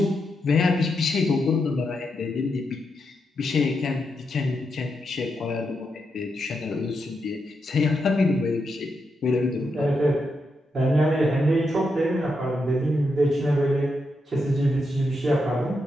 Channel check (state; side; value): normal; both; correlation 0.84